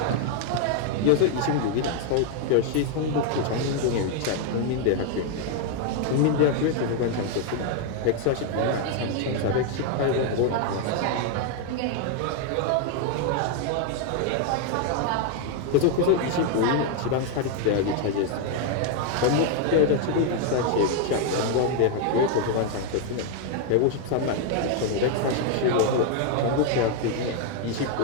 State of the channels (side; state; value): both; different; correlation 0.00